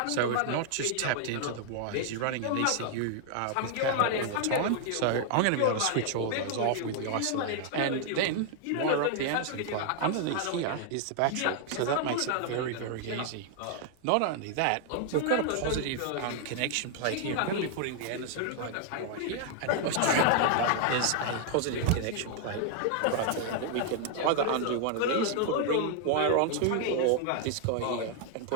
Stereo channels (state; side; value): different; both; correlation 0.00